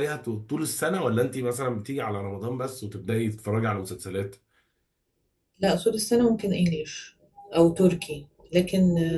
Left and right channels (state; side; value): identical; both; correlation 1.00